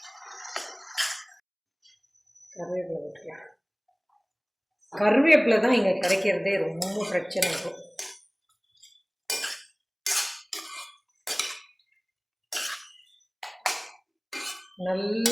கருவேப்பிலை போட்டுக்கலாம். கருவேப்பிலை தான் இங்கே கிடைக்கிறதே ரொம்ப பிரச்சனை இருக்கும்.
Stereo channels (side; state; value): both; identical; correlation 1.00